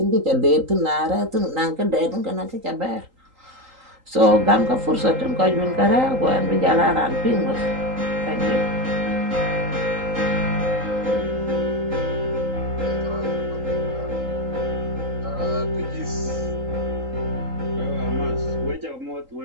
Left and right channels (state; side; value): late; left; 3.8 ms